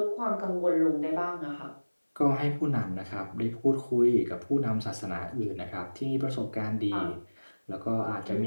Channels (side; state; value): both; inverted; correlation -1.00